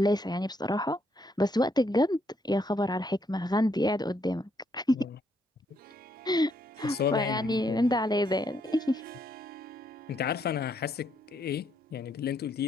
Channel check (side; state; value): both; normal; correlation 0.73